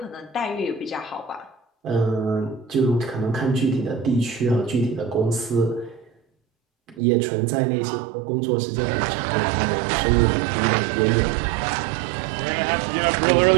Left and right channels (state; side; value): drops out; left; at 7.0 s